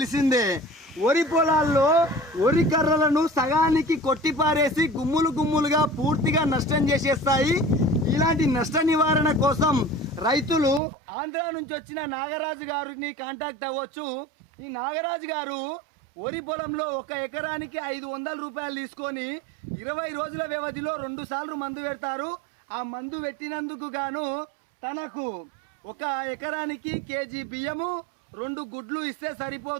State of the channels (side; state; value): left; drops out; at 10.8 s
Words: వరి పొలాల్లో వరి కర్రలను సగానికి కొట్టిపారేసి గుమ్ములు గుమ్ములుగా పూర్తిగా నష్టం చేసేస్తాయి. ఇలాంటి నష్ట నివారణ కోసం రైతులు ఆంధ్ర నుంచి వచ్చిన నాగరాజు గారిని కాంటాక్ట్ అవ్వచ్చు. ఈ నాగరాజు గారు వరి పొలంలో 1 ఎకరానికి 500 రూపాయలు తీసుకొని 20 రోజుల వ్యవధిలో 2 సార్లు మందు పెడతారు. ఆ మందు పెట్టినందుకు గాను తనకు 1 ఎకరానికి కేజీ బియ్యము 2 గుడ్లు ఇస్తే